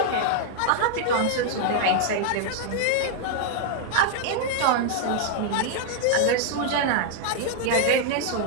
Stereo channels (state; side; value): different; both; correlation -0.01